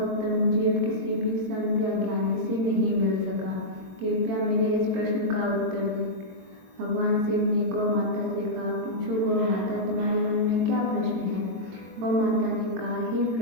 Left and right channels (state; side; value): late; left; 22 ms